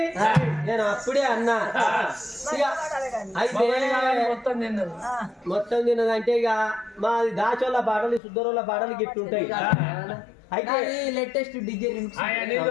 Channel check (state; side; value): drops out; right; at 8.2 s